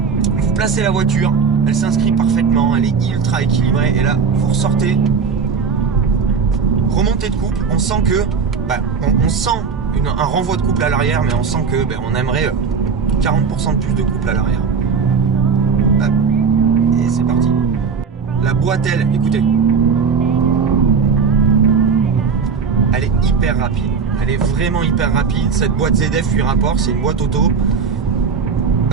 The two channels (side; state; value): left; quieter; 5.6 dB